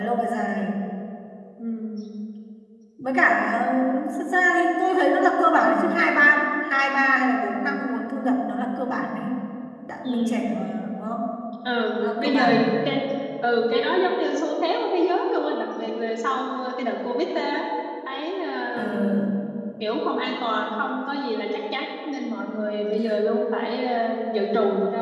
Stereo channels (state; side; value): identical; both; correlation 1.00